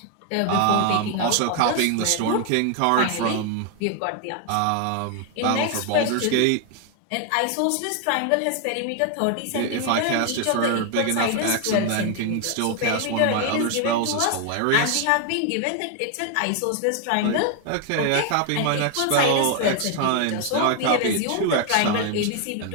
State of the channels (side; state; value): both; different; correlation 0.01